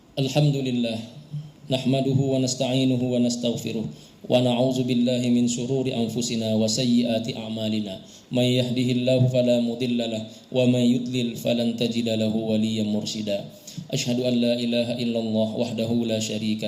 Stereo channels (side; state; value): both; identical; correlation 1.00